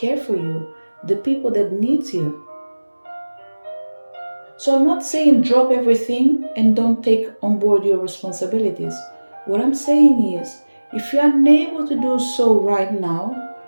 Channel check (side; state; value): both; inverted; correlation -1.00